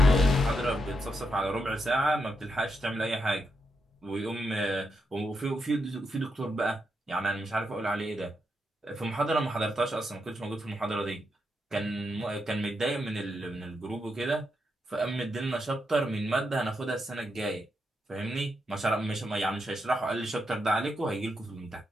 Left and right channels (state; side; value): normal; both; correlation 0.83